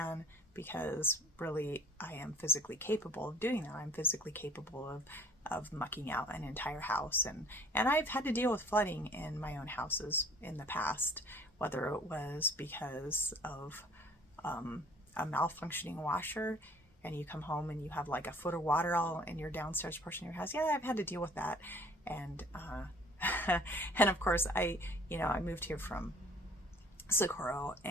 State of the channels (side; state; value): both; normal; correlation 0.53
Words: because really I am physically capable of doing that. I'm physically capable of mucking out an entire house, and I've had to deal with flooding in my own houses in the past, whether it was because of a malfunctioning washer, and you come home and you have like a foot of water all in your downstairs portion of your house. Yeah, I've had to deal with that. And and of course I moved here from Socorro,